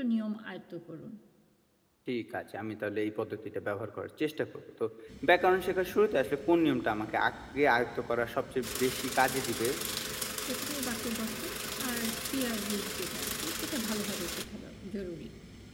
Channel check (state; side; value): identical; both; correlation 1.00